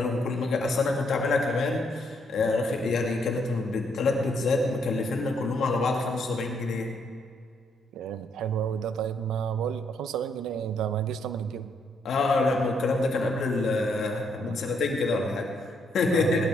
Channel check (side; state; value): both; normal; correlation 0.73